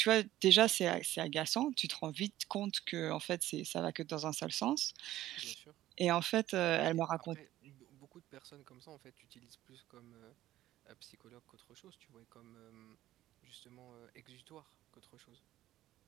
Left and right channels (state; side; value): quieter; left; 14.5 dB